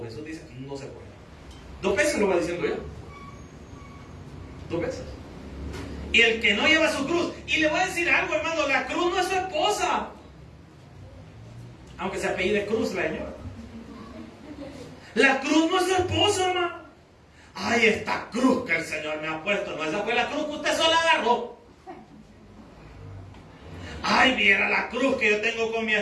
Jesús dice que no se puede. 2 veces lo va diciendo yo. 2 veces. Y el que no lleva su cruz. Y le voy a decir algo, hermano, la cruz no es su esposa. Aunque se apellide Cruz la señora. La cruz no es su esposo, hermano. Ay, esta cruz que el Señor me ha puesto. No, esa fue la cruz que usted sola agarró. Ay, viera la cruz que yo tengo con mi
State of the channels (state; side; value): identical; both; correlation 1.00